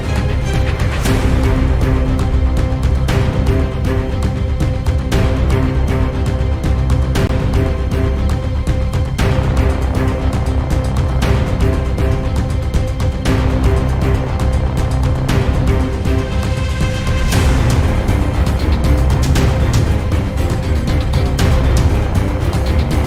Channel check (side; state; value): both; identical; correlation 1.00